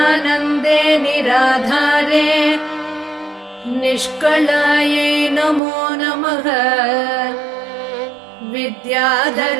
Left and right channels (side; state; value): left; drops out; at 5.6 s